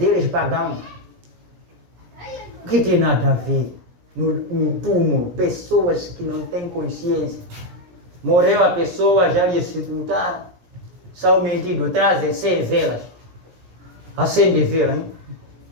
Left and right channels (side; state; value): left; late; 17 ms